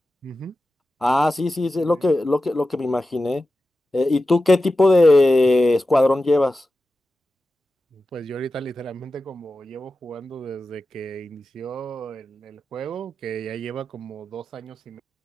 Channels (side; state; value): both; normal; correlation 0.93